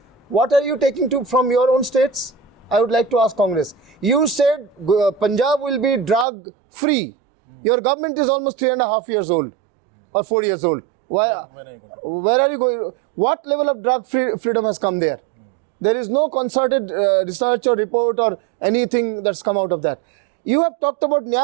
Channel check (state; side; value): drops out; left; at 6.2 s